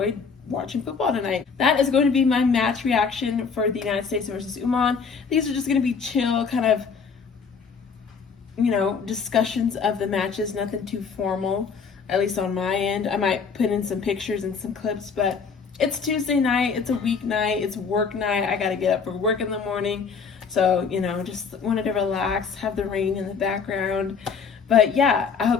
watching football tonight. That is going to be my match reaction for the United States versus Oman. These are just going to be chill, kind of you know, discussions of the matches, nothing too formal, at least on my end. I might put in some pictures and some clips, but it's Tuesday night, it's a weeknight, it's work night. I gotta get up for work in the morning. So, you know, just wanted to relax, have the rain in the background. But yeah, I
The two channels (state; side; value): quieter; right; 5.7 dB